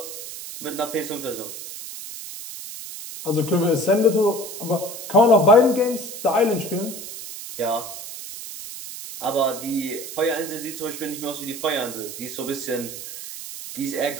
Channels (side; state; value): right; noise; hiss, 10 dB below the sound